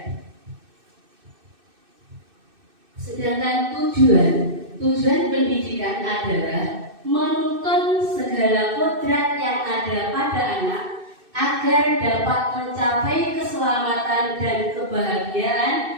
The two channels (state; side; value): late; left; 2.6 ms